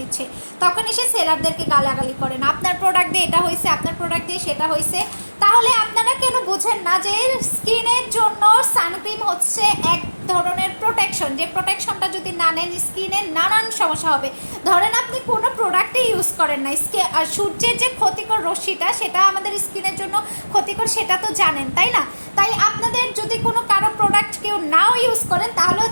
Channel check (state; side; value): inverted; both; correlation -1.00